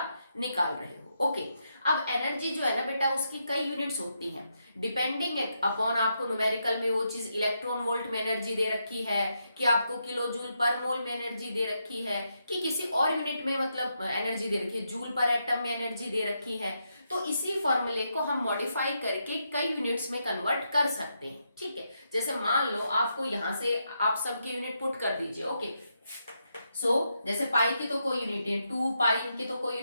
निकाल रहे हो। ओके, अब एनर्जी जो है ना बेटा उसकी कई यूनिट्स होती हैं, डिपेंडिंग अपॉन आपको न्यूमेरिकल में वो चीज इलेक्ट्रॉन वोल्ट में एनर्जी दे रखी है, कि आपको किलो जूल पर मोल में एनर्जी दे रखी है, कि किसी और यूनिट में मतलब एनर्जी दे रखी है, जूल पर एटम में एनर्जी दे रखी है। तो इसी फॉर्मूले को हम मॉडिफाई करके कई यूनिट्स में कन्वर्ट कर सकते हैं। ठीक है, जैसे मान लो आपको यहां से आप सबके यूनिट पुट कर दीजिए। ओके, सो जैसे पाई की तो कोई यूनिट है, 2 पाई की तो कोई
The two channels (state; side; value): inverted; both; correlation -0.82